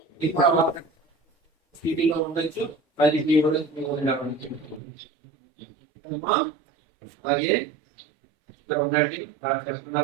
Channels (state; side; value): drops out; left; at 4.8 s